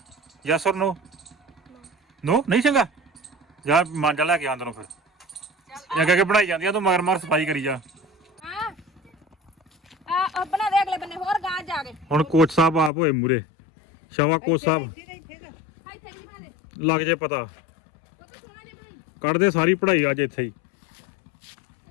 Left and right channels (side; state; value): right; drops out; at 12.9 s